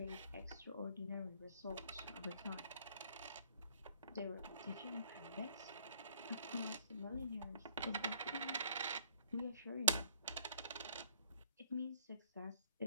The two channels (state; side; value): inverted; both; correlation -0.61